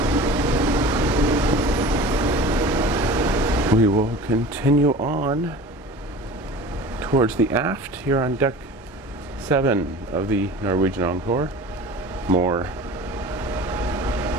We will continue on towards the aft here on deck 7 of the Norwegian Encore. More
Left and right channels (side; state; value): both; normal; correlation 0.38